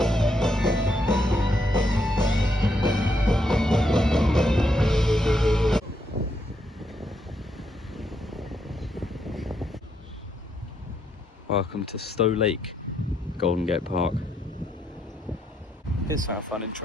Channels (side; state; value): both; normal; correlation 0.77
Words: Welcome to Stowe Lake, Golden Gate Park. Here's something fun,